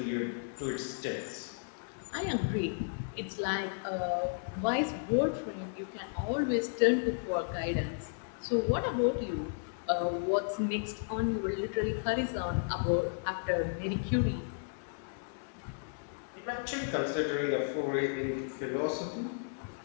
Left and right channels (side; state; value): right; silent; digital silence